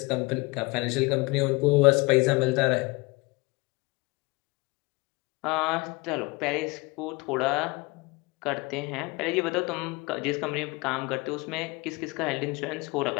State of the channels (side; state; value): right; quieter; 25.1 dB